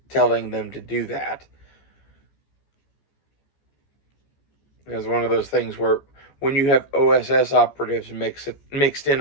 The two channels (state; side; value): late; right; 14 ms